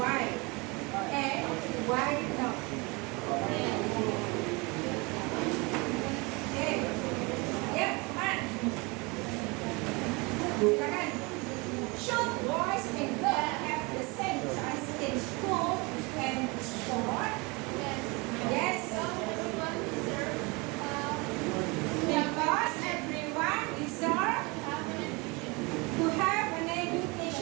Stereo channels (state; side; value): quieter; left; 27.2 dB